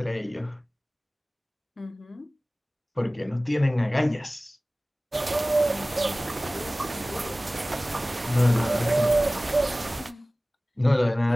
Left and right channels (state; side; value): normal; both; correlation 0.98